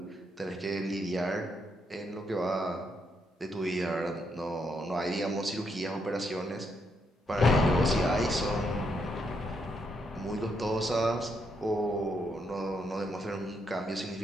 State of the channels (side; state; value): both; normal; correlation 0.77